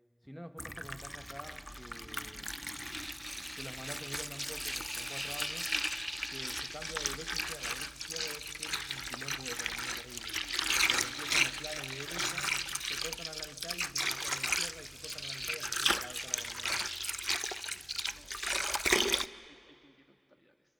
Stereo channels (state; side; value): identical; both; correlation 1.00